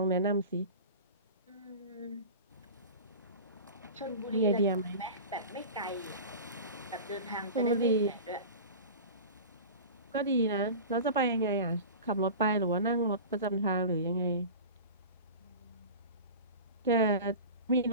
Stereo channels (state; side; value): inverted; both; correlation -0.34